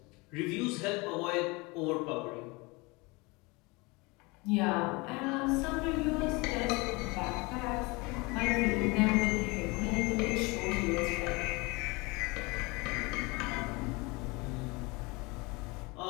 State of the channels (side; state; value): right; quieter; 25.7 dB